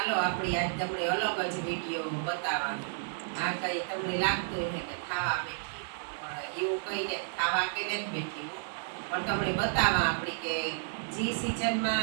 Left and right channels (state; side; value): silent; left; digital silence